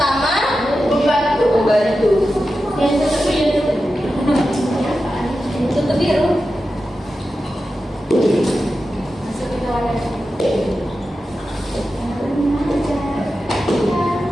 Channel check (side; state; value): both; normal; correlation 0.91